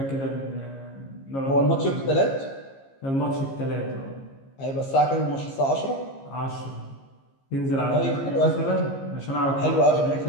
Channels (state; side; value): late; right; 15 ms